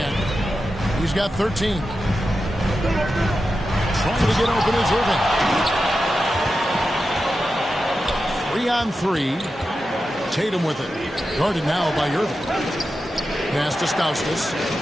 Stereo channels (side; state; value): both; normal; correlation 0.90